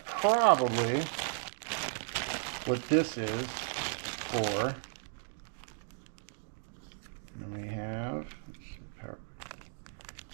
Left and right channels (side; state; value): left; silent; digital silence